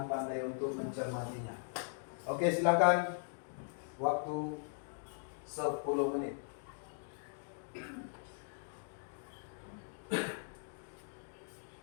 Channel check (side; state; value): right; silent; digital silence